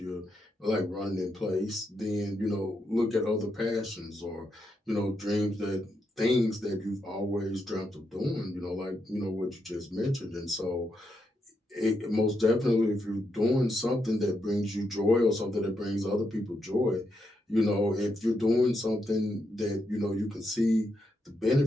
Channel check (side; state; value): both; normal; correlation 0.82